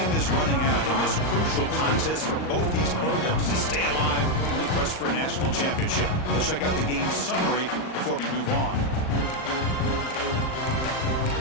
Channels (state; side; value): late; right; 38 ms